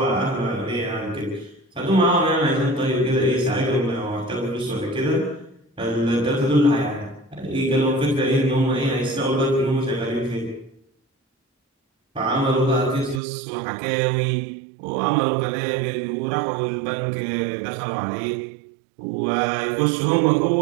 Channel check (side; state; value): left; drops out; at 13.2 s